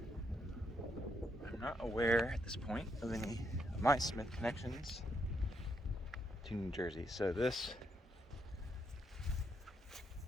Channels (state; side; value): normal; both; correlation 0.77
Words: I'm not aware at this point of any of my Smith connections to New Jersey, so this,